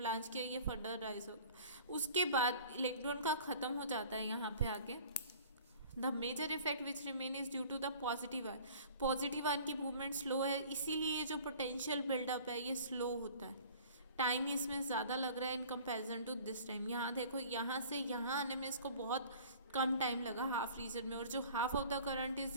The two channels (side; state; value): both; inverted; correlation -0.47